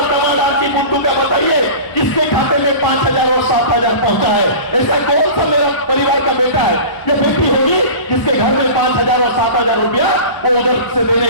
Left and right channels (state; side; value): late; right; 1.0 ms